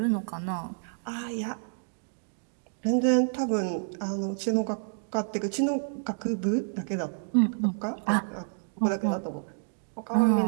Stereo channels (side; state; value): left; silent; digital silence